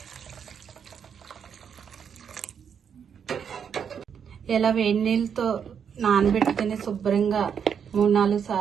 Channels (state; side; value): quieter; left; 7.5 dB